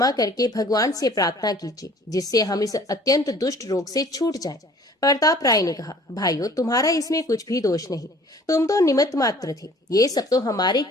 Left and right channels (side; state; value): both; normal; correlation 0.52